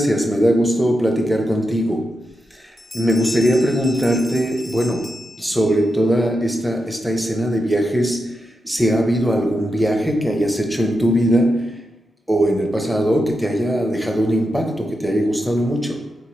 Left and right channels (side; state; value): both; normal; correlation 0.87